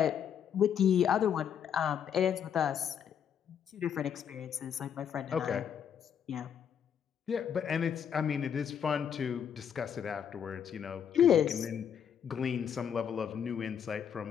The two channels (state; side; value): quieter; right; 8.3 dB